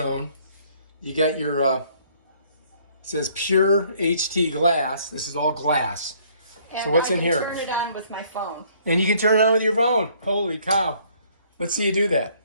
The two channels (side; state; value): both; inverted; correlation -0.62